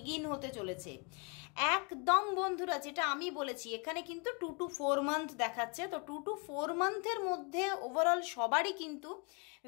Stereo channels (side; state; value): right; quieter; 33.9 dB